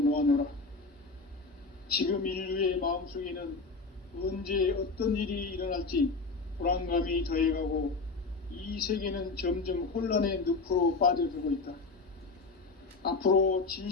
지금 인류의 마음속에는 언제 어떤 일이 일어날지 불안감이 더해가고 이 세계는 점점 혼란의 늪으로 빠져들고 있다. 앞으로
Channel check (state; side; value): quieter; right; 3.9 dB